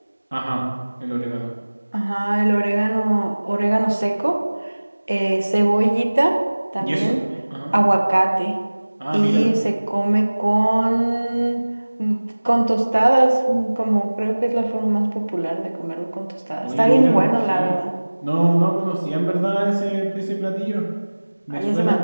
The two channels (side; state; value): both; inverted; correlation -1.00